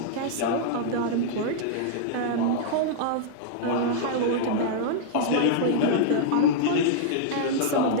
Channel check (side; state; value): both; different; correlation -0.02